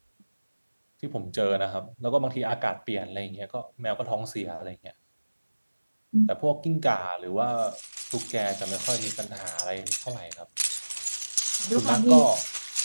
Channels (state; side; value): inverted; both; correlation -1.00